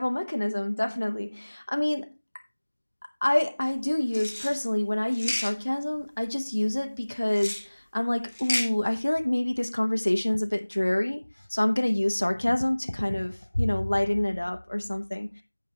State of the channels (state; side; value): inverted; both; correlation -1.00